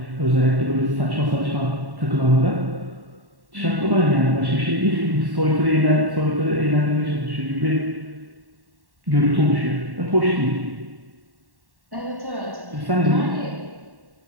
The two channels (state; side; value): late; left; 1.1 ms